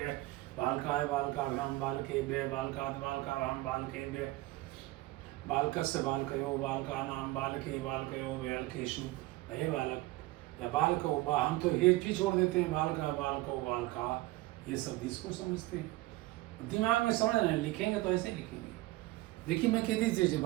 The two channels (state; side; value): quieter; left; 19.0 dB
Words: बालकाय बालकाभ्याम बालकेभ्य बालकात् बालकाभ्याम बालकेभ्य बालकस्य बालकयो बालकानां बालके बालकयो बालकेषु। हे बालक या बालको, हम तो ये भी छोड़ देते हैं, बालका बालको बालका, ये सब इसको समझते हैं। दिमाग में समझ रहे हैं, लिखेंगे तो ऐसे लिखेंगे। देखिए मैं कह दीजिए,